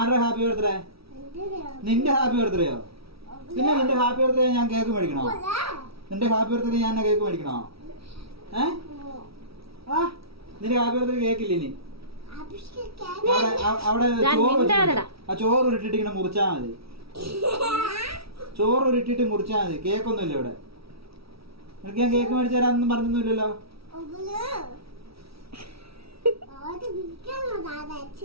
ഹാപ്പി ബർത്ത്ഡേ? നിന്റെ ഹാപ്പി ബർത്ത്ഡേയോ? പിന്നെ നിന്റെ ഹാപ്പി ബർത്ത്ഡേ ഞാൻ കേക്ക് മേടിക്കണോ? നിന്റെ ഹാപ്പി ബർത്ത്ഡേ ഞാൻ കേക്ക് മേടിക്കണോ? നിന്റെ ഹാപ്പി ബർത്ത്ഡേ കേക്കില്ല ഇനി. അവിടെ ചോറ് ഉരുട്ടിട്ട് ഇങ്ങനെ മുറിച്ചാ മതി. ചോറ് ഉരുട്ടിട്ട് മുറിച്ചാ മതി. കേക്കൊന്നുമില്ല ഇവിടെ. നിനക്ക് ഞാൻ കേക്ക് മേടിച്ചു തരാന്നൊന്നും പറഞ്ഞൊന്നുമില്ലല്ലോ.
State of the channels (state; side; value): late; left; 0.76 ms